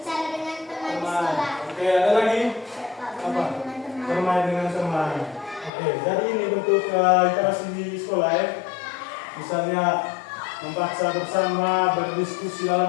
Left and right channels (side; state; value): right; drops out; at 5.7 s